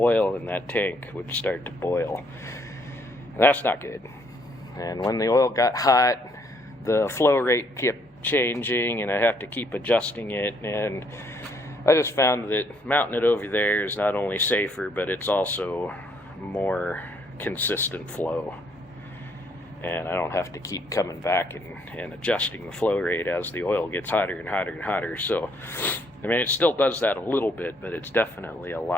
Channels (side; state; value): both; normal; correlation 0.68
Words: in that tank would start to boil, and that's not good. And when the oil got hot, the flow rate kept changing, and I have to keep adjusting it, and I just found that mounting it over there is not only safer, but it's also more consistent flow, and I don't have to keep coming back and adjusting the flow rate as the oil gets hotter and hotter and hotter. So I mean, it still does that a little bit, but it's definitely a